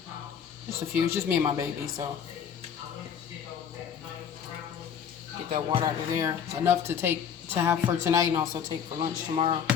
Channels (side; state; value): right; quieter; 7.9 dB